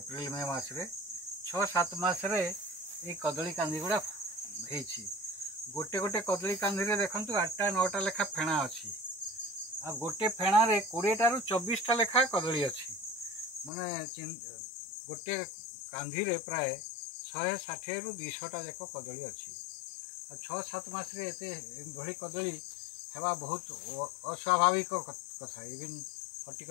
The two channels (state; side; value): drops out; right; at 13.7 s